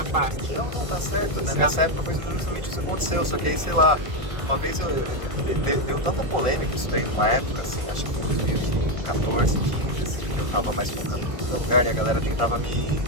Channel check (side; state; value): left; late; 1.6 ms